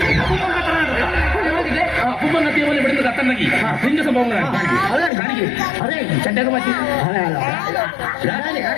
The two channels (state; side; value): drops out; right; at 5.1 s